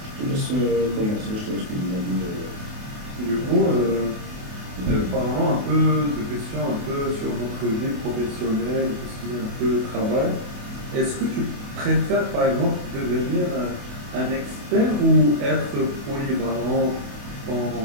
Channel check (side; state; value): left; late; 28 ms